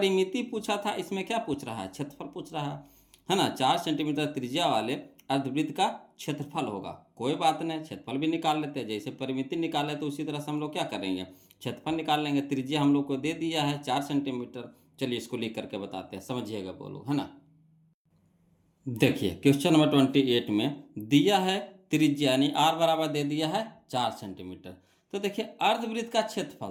पूछा था, इसमें क्या पूछ रहा है क्षेत्रफल पूछ रहा है ना। 4 सेंटीमीटर त्रिज्या वाले अर्धवृत्त का क्षेत्रफल होगा, कोई बात नहीं, क्षेत्रफल भी निकाल लेते हैं, जैसे परिमिति निकाले तो उसी तरह से हम लोग क्या करेंगे क्षेत्रफल निकाल लेंगे। त्रिज्या हम लोग को दे दिया है 4 सेंटीमीटर, चलिए इसको लिख करके बताते हैं, समझिएगा बोलो, है ना। देखिए क्वेश्चन नंबर 28 में दिया है त्रिज्या यानी आर बराबर दे दिया है 4 सेंटीमीटर। तो देखिए अर्धवृत्त का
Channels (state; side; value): identical; both; correlation 1.00